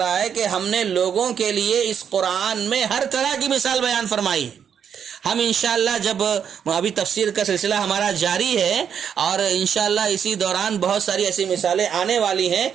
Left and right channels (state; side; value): quieter; left; 7.9 dB